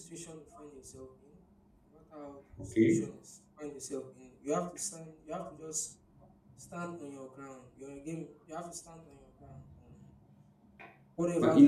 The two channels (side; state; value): both; identical; correlation 1.00